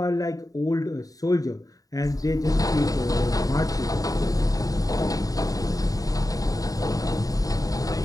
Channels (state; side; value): late; right; 0.17 ms